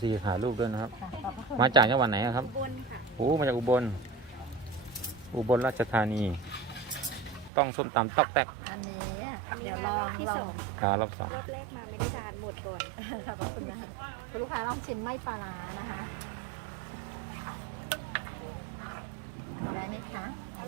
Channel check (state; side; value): drops out; left; at 7.5 s